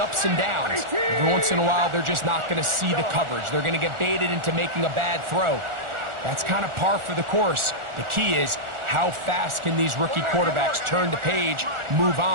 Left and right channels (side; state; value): left; late; 1.4 ms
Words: and downs. Every once in a while, they're just not going to see the coverage. They're going to get baited into making a bad throw. That's kind of par for the course. The key is, how fast can these rookie quarterbacks turn the page, move